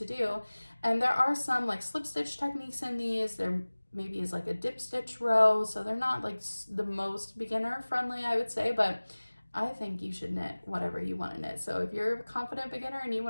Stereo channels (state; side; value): inverted; both; correlation -1.00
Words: do. And there are some like slip stitch techniques in these. There maybe is like a dip stitch row. So they're not like the most beginner friendly, I would say, but I think you should knit whatever you want to knit. So if you're a confident beginner and you